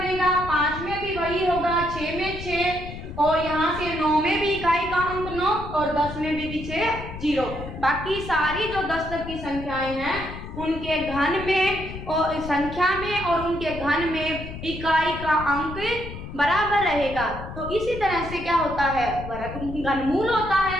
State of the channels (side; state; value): left; noise; rumble, 10 dB below the sound